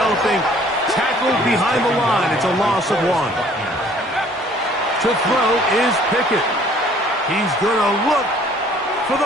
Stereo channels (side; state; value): both; normal; correlation 0.56